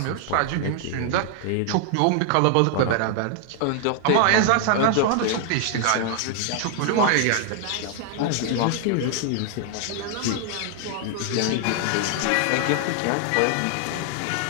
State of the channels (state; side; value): different; both; correlation 0.00